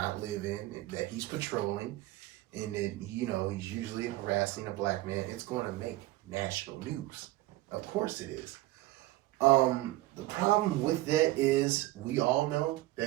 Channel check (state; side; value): quieter; left; 17.8 dB